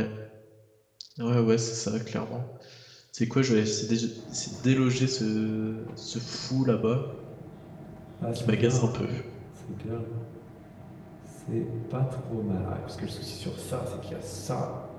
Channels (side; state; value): both; identical; correlation 1.00